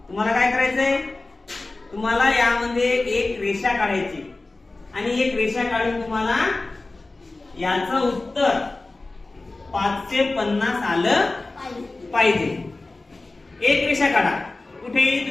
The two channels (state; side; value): quieter; right; 3.2 dB